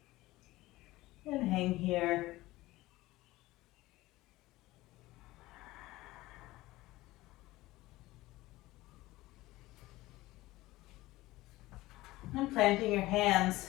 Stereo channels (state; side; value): quieter; right; 18.2 dB